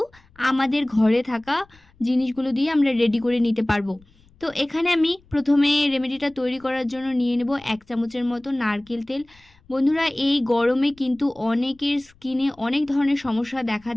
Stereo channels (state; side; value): noise; left; rumble, 29 dB below the sound